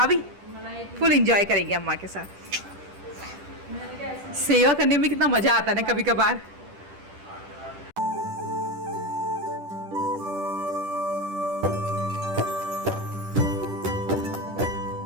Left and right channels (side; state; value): left; late; 10 ms